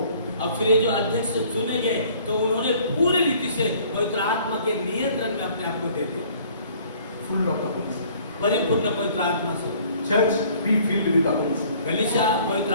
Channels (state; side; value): inverted; both; correlation -0.56